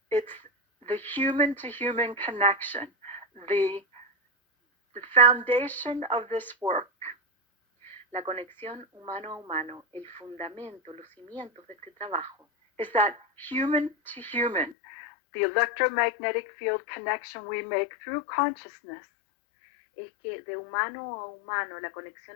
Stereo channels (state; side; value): drops out; right; at 14.8 s